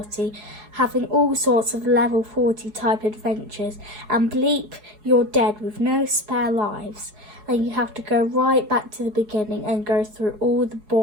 having all sorts of level 40 type adventures, and bleep, you're dead with no spare lives. And you have to go right back to the beginning and go through all the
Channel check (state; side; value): late; left; 4.7 ms